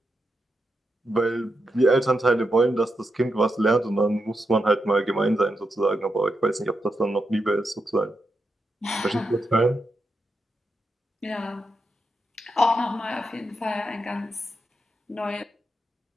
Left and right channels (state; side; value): normal; both; correlation 0.85